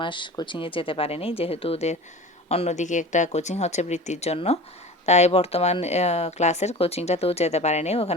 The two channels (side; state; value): both; normal; correlation 0.36